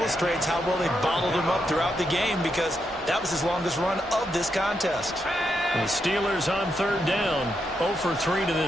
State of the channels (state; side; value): normal; both; correlation 0.82